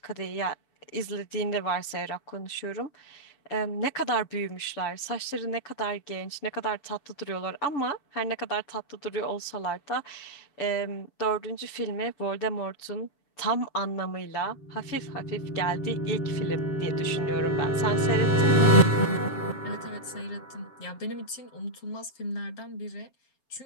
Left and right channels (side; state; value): right; late; 7.0 ms